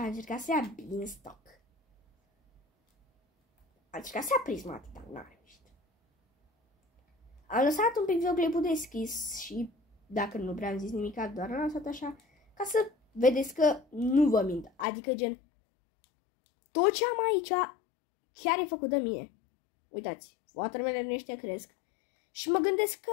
a încercat să ia Beanstalk. A încercat să ia prismat, dar n-a reușit. Am lăsat un pic videoclipul deschis și dacă nu prea am zis nimic, doar am lăsat așa ca să vedeți că nu vă mint. Adică gen, tot ce am aici chiar e făcut de mine. Uitați, watermelon ăștia cresc. Și mă gândesc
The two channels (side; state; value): right; drops out; at 14.9 s